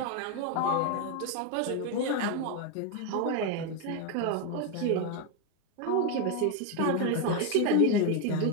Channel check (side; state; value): both; different; correlation 0.02